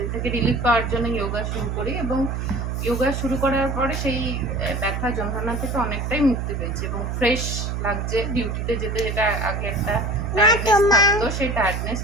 থেকে রিলিফ পাওয়ার জন্য যোগা শুরু করি এবং যোগা শুরু করার পরে সেই ব্যথা যন্ত্রণা থেকে অনেকটাই মুক্তি পেয়েছি এবং ফ্রেশ লাগছে। ডিউটিতে যেতে যেটা আগে একটা টায়ার্ডনেস থাকতো, সেই টায়ার্ডনেস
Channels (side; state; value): right; noise; hum, 3 dB below the sound